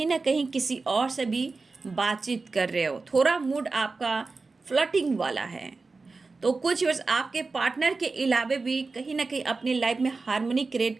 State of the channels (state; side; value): quieter; left; 3.9 dB